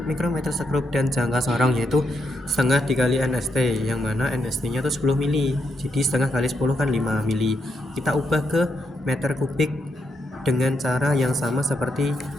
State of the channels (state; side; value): normal; both; correlation 0.80